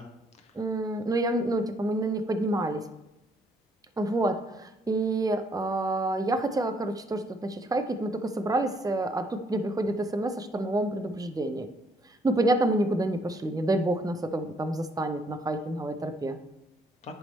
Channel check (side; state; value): both; normal; correlation 0.68